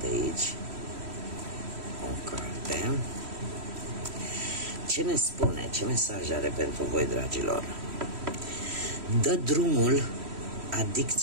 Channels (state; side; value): late; left; 3.1 ms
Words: aici o carte. Ce ne spune, ce mesaj are pentru voi, dragilor? Dă drumul